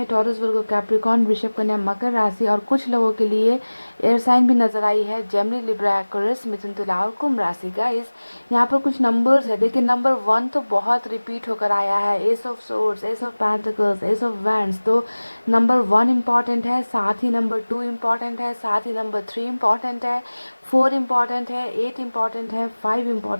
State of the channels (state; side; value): inverted; both; correlation -1.00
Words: टॉरस, वर्गो, कैप्रिकॉर्न, वृषभ, कन्या, मकर राशि। और कुछ लोगों के लिए एयर साइन भी नजर आई है, जेमिनी, लिब्रा, एक्वेरियस, मिथुन, तुला और कुंभ राशि। गाइस, यहाँ पर कुछ नंबर्स है, देखिए नंबर 1 तो बहुत रिपीट होकर आया है, S of swords, S of pentacles, S of wands. तो नंबर 1 इम्पॉर्टेंट है, साथ ही नंबर 2 इम्पॉर्टेंट है, साथ ही नंबर 3 इम्पॉर्टेंट है, 4 इम्पॉर्टेंट है, 8 इम्पॉर्टेंट है, 5